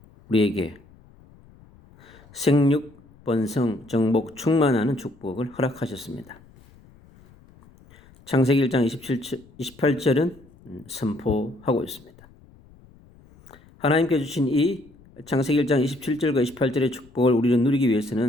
우리에게 생육, 번성, 정복, 충만하는 축복을 허락하셨습니다. 창세기 1장 28절은 선포하고 있습니다. 하나님께 주신 이 창세기 1장 27절과 28절의 축복을 우리는 누리기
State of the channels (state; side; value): noise; left; rumble, 26 dB below the sound